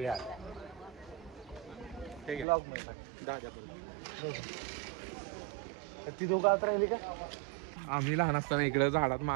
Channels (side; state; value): left; drops out; at 2.5 s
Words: आले. ती दोघं आत राहिली का? आम्ही लहान असताना इकडे झाडात